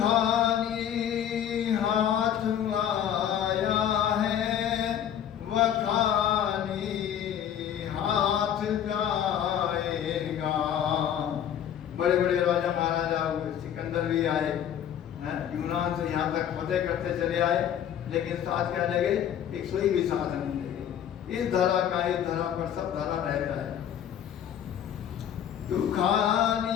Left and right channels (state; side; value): quieter; right; 9.7 dB